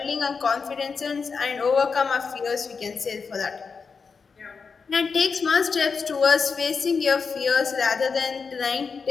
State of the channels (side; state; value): right; quieter; 5.3 dB